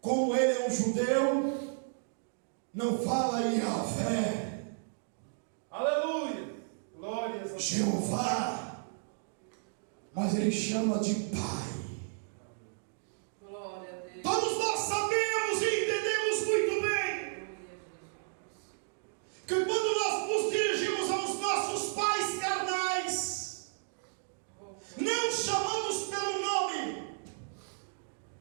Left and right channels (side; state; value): left; silent; digital silence